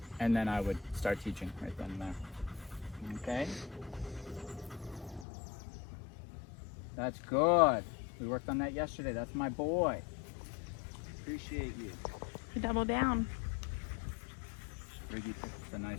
And then I would start teaching right then and there. Okay? That's good. We worked on that yesterday. That's my boy. Appreciate you. Double down. Riggy picked a nice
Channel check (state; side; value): drops out; right; at 5.2 s